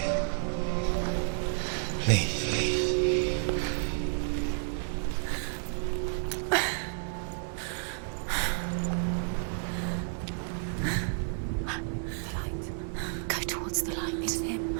Please. The light. Go towards the light. It's him.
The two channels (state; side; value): silent; left; digital silence